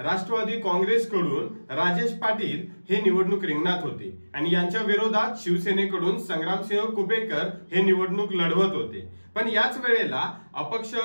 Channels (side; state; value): both; inverted; correlation -1.00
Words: काँग्रेसकडून राजेश पाटील हे निवडणूक रिंगणात होते आणि यांच्या विरोधात शिवसेनेकडून संग्रामसिंह कुपेकर हे निवडणूक लढवत होते। पण याच वेळेला अपक्ष